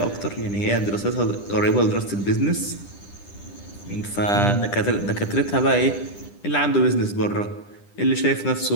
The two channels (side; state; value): right; late; 10 ms